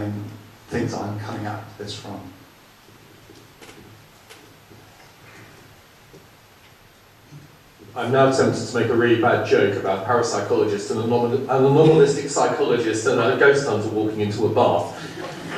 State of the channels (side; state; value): both; identical; correlation 1.00